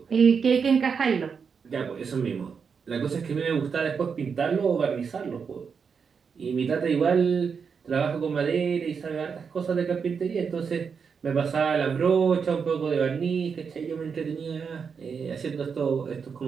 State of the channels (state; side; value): quieter; left; 6.1 dB